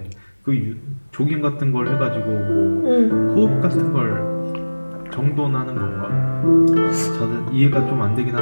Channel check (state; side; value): inverted; both; correlation -1.00